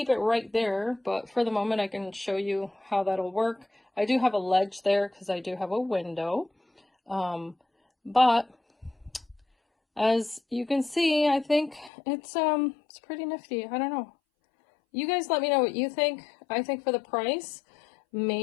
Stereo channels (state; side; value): drops out; right; at 11.9 s